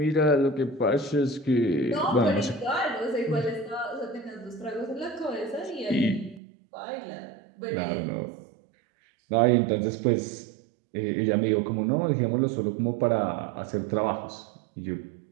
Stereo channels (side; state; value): left; drops out; at 6.4 s